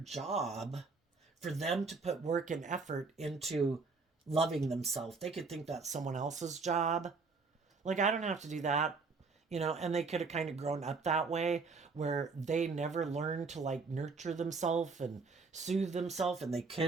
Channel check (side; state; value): left; quieter; 4.4 dB